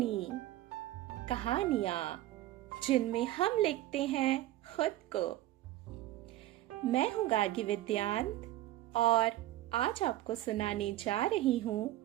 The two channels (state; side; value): quieter; left; 15.2 dB